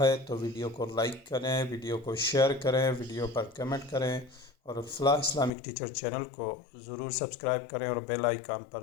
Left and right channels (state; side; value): drops out; right; at 5.5 s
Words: तो वीडियो को लाइक करें, वीडियो को शेयर करें, वीडियो पर कमेंट करें और फलाह इस्लामिक टीचर चैनल को ज़रूर सब्सक्राइब करें और बेल आइकन